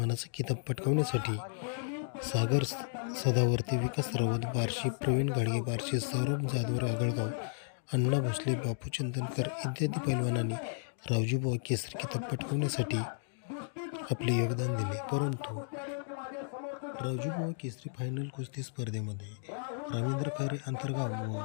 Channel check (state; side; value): silent; right; digital silence